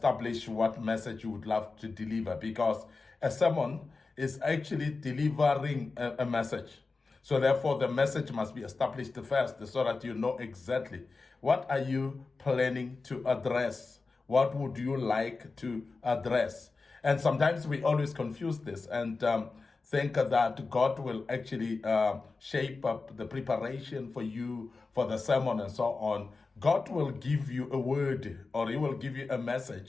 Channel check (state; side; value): quieter; right; 4.0 dB